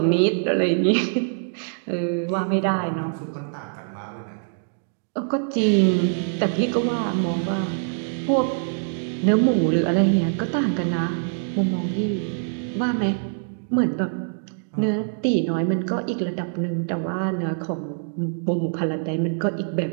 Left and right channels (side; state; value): left; silent; digital silence